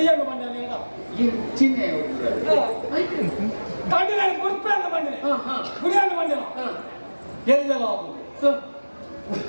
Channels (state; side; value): inverted; both; correlation -1.00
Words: ಬಂದ ಚಿಹ್ನೆ ಕಂಡು ನಾನು ಗುಡ್ಪೆ ಅಂತ ಬಂದಿನಿ ಗುಡಿಯನ್ನು ಬಂದಿನ ಎಲ್ಲೆಲ್ಲ ಆಗುದು